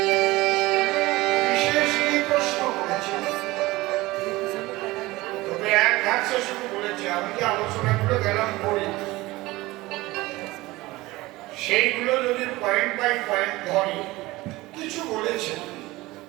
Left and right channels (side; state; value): left; quieter; 19.7 dB